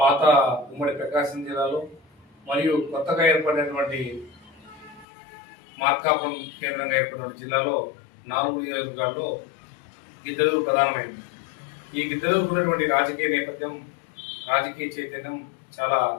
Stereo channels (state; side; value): drops out; right; at 5.1 s